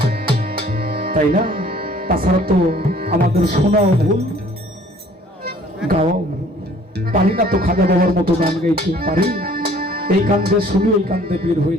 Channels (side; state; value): both; normal; correlation 0.55